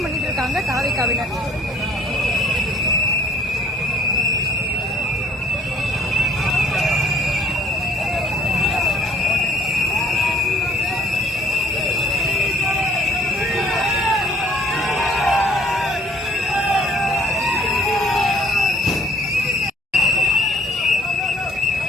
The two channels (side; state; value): both; normal; correlation 0.57